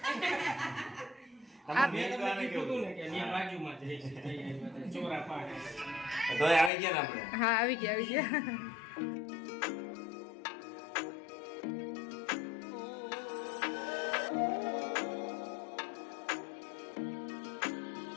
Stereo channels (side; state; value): right; drops out; at 6.7 s